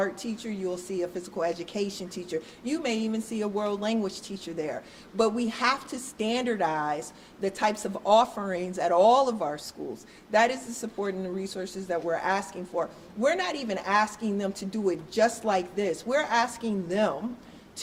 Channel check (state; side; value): identical; both; correlation 1.00